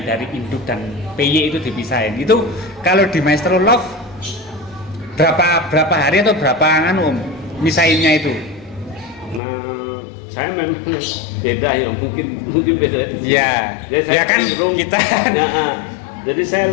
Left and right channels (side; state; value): right; drops out; at 9.4 s